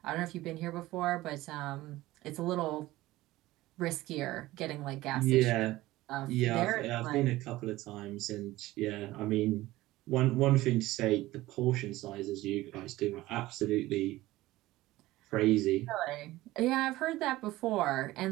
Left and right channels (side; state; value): left; quieter; 17.5 dB